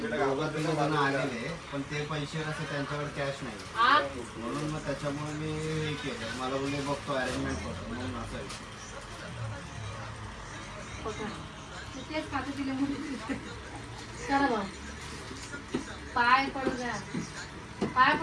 तिघं जण आलेले पण ते पैसे कसं त्यांच्याकडे कॅश नाही म्हणून मग त्याच्यामुळे मी हे केलं. मला बोलले बघतो अरेंजमेंट करतो म्हणून असं आहे. तेच खाते तिला मुली. चला भाऊ. पाय पडू द्या. पाय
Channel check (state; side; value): identical; both; correlation 1.00